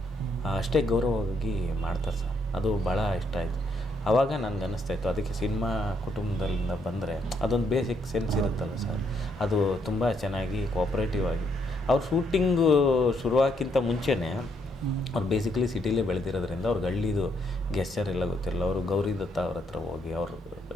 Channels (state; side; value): normal; both; correlation 0.73